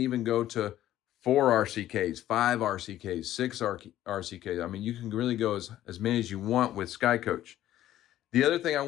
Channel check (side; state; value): right; quieter; 13.1 dB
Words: go to 4 RCKs, 5 RCKs, 6 RCKs. I mean, you can really go as many as you want with Skycoach. The other thing I